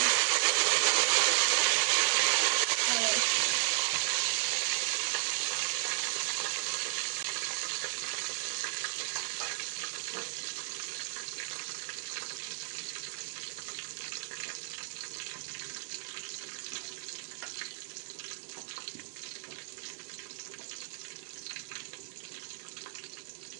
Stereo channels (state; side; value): silent; left; digital silence